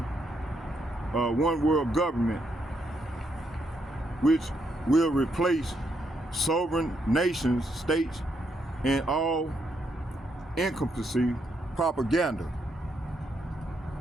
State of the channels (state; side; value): normal; both; correlation 0.77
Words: one world government, which will replace sovereign nations, states, and all encompassing propaganda,